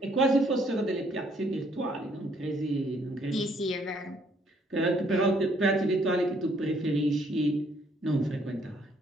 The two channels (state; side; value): normal; both; correlation 0.66